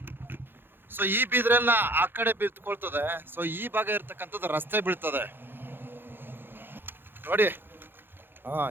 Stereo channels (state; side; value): late; left; 0.10 ms